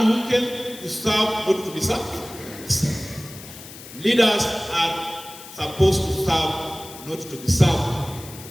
who came to serve, not to be served. Leaders are supposed to serve, not to be served.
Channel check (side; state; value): left; noise; hiss, 16 dB below the sound